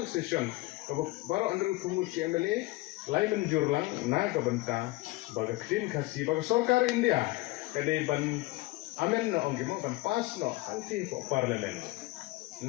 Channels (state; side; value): quieter; right; 20.3 dB